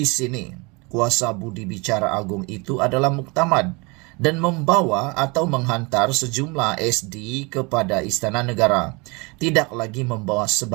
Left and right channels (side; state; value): left; quieter; 27.9 dB